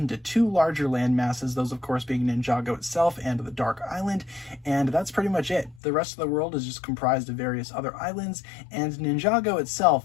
two larger land masses, those of course being Ninjago itself and the Dark Island, and that's pretty much it. The rest of the world is just comprised of various other islands, and Ninjago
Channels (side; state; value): right; drops out; at 5.8 s